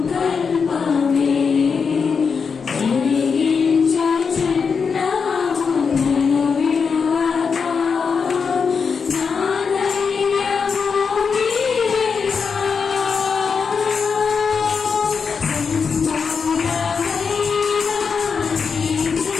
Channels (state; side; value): quieter; right; 5.7 dB